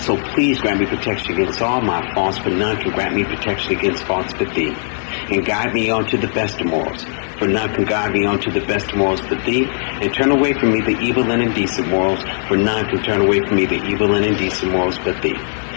So please grant me protection against all my faults, for none can grant me protection against faults but thee. And guide me on to the best of morals, for none can guide me on to the best of morals but thee. And turn away from me the evil and indecent morals, for none can turn away from me the evil and indecent morals but thee.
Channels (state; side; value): silent; right; 67 dB below the other